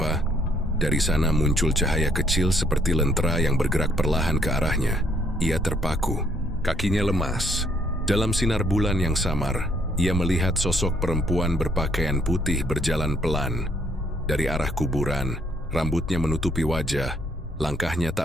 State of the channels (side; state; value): both; normal; correlation 0.68